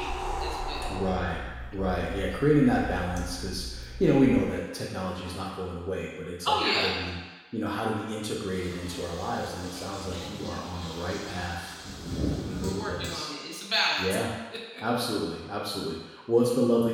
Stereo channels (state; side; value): identical; both; correlation 1.00